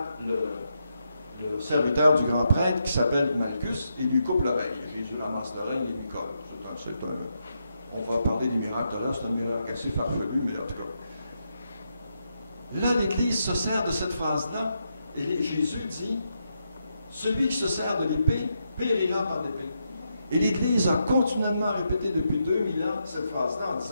le serviteur du grand prêtre qui s'appelle Malchus et lui coupe l'oreille. Jésus ramasse l'oreille et lui colle. On va parler des miracles là, c'est un miracle assez farfelu, mais en tout cas. Là, l'Église se sert de cette phrase-là et Jésus dit, celui qui se sert de l'épée périra par l'épée. Et l'Église a continuellement répété depuis 2000 ans cette phrase-là en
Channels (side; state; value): both; inverted; correlation -0.82